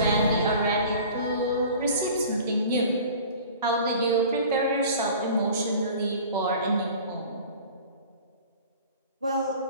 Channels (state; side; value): inverted; both; correlation -0.43